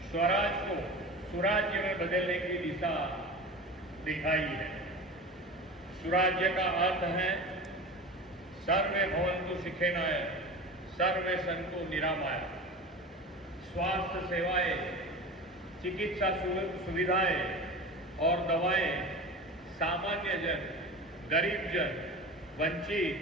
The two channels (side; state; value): both; normal; correlation 0.33